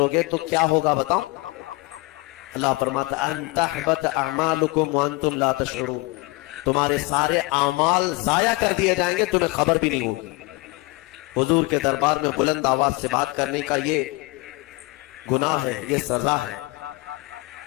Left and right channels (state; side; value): quieter; right; 23.7 dB